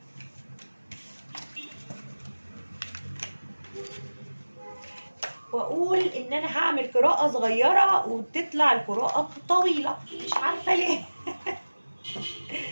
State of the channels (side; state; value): both; inverted; correlation -1.00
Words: واقول ان انا هعمل قراءة صغيرة وتطلع القراءة طويلة، مش عارفة ليه.